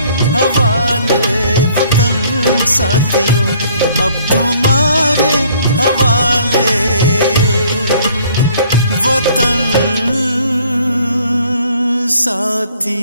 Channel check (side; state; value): both; inverted; correlation -0.59